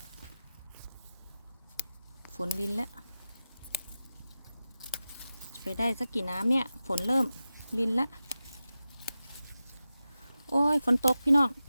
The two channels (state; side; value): inverted; both; correlation -0.93